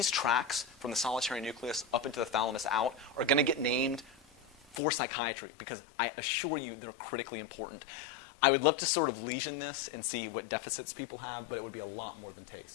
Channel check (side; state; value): right; drops out; at 4.8 s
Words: tracks from the solitary nucleus up into the thalamus out are going to get named for psychiatry because I assure you they're critically important. I would love to sort of lesion this and see what deficits people have, but it would be a lot more than